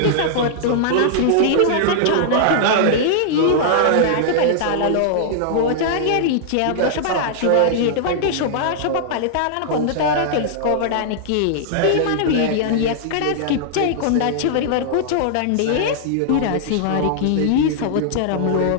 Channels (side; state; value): both; different; correlation -0.01